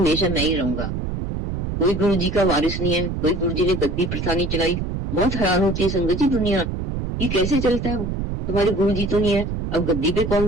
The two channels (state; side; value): noise; right; rumble, 4 dB below the sound